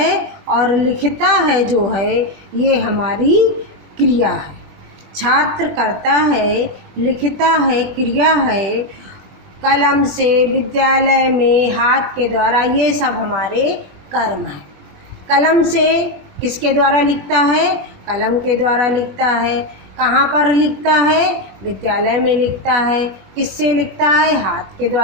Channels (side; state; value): left; late; 20 ms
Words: और लिखता है जो है ये हमारी क्रिया है। छात्र कर्ता है, लिखता है क्रिया है, कलम से विद्यालय में हाथ के द्वारा, ये सब हमारे कर्म हैं। कलम से किसके द्वारा लिखता है? कलम के द्वारा लिखता है। कहाँ पर लिखता है? विद्यालय में लिखता है। किससे लिखता है? हाथ के